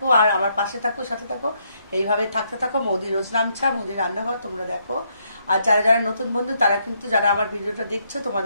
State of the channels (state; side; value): inverted; both; correlation -0.74